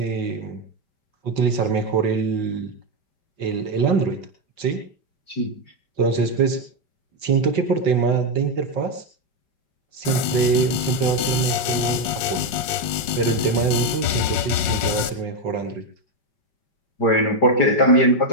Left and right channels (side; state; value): right; late; 5.6 ms